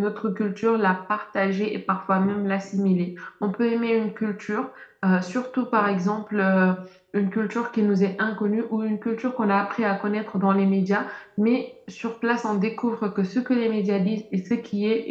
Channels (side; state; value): both; identical; correlation 1.00